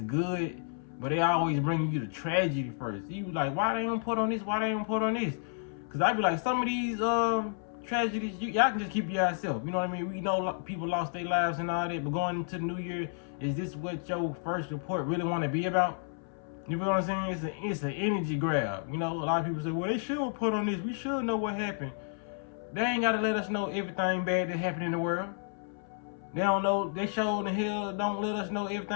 but they always bring you the tragedy first. You like, why they don't put on this? Why they don't put on this? Because I be like, some of these tragedies, y'all can just keep to yourself. You know what I mean? We know people lost their lives and all that, but going into the new year, is this what your first report really want to be about? You feel what I'm saying? It's an energy grab. You know, a lot of people say, well, they should put on this. We should know what happened. They ain't got to let us know everything bad that happened in the world. They don't know. They sure the hell don't let us know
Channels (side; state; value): right; silent; 57 dB below the other